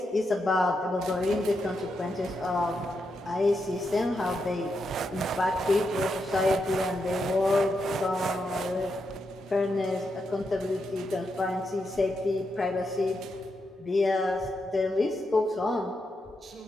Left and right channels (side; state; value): both; normal; correlation 0.84